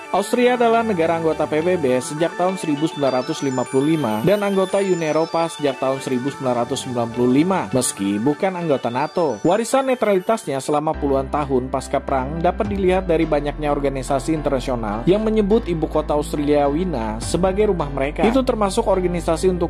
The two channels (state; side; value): identical; both; correlation 1.00